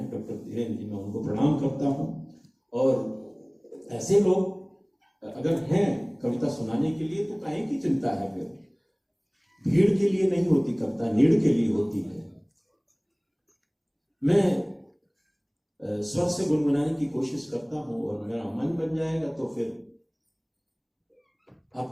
डॉक्टर धीरेन्द्र जी, मैं उनको प्रणाम करता हूँ। और ऐसे लोग अगर हैं कविता सुनाने के लिए तो काहे की चिंता है? फिर भीड़ के लिए नहीं होती कविता, नीड़ के लिए होती है। मैं स्वर से गुनगुनाने की कोशिश करता हूं, और मेरा मन बन जाएगा तो फिर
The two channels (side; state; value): both; identical; correlation 1.00